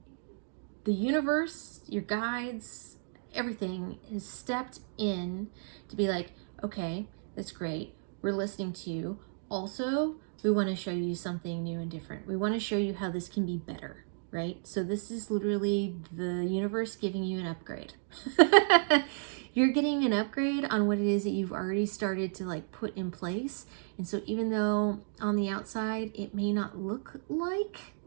the universe, your guides, everything has stepped in to be like, okay, that's great, we're listening to you. Also, we want to show you something new and different. We want to show you how this can be better, right? So this is literally the universe giving you an upgrade. You're getting an upgrade on what it is that you've already started to like put in place. And so even though on the outside it may not look like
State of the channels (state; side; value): silent; left; digital silence